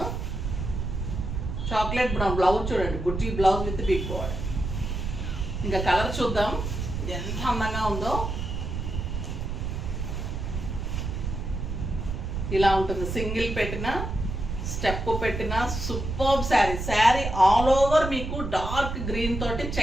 చాక్లెట్ బ్రౌన్ బ్లౌజ్ చూడండి, బుట్టి బ్లౌజ్ విత్ బిగ్ బార్డర్. ఇంకా కలర్ చూద్దాం ఎంత అందంగా ఉందో. ఇలా ఉంటుంది, సింగిల్ పెట్టిన, స్టెప్ పెట్టిన super sari. Sari all over మీకు డార్క్ గ్రీన్ తోటి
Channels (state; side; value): noise; right; rumble, 4 dB below the sound